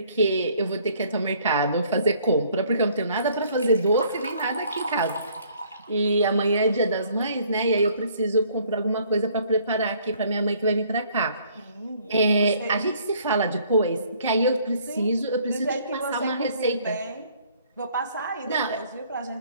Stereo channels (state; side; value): inverted; both; correlation -0.61